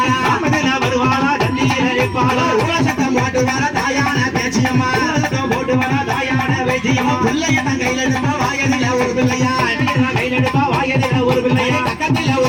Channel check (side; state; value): both; identical; correlation 1.00